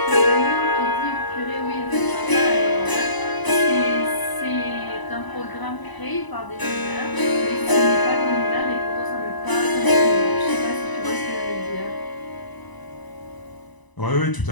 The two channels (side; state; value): right; late; 1.0 ms